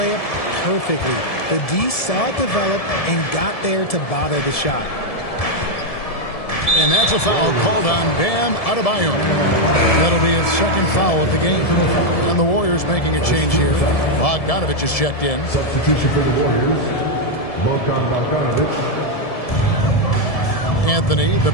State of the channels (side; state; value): right; late; 1.7 ms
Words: perfectly. The D saw it develop and got there to bother the shot. And that's a foul called on Bam Adebayo. That'll be his 2nd foul of the game. And the Warriors making a change here. Bogdanovich is checked in. Substitution for the Warriors. Bogdanovich. Anthony, the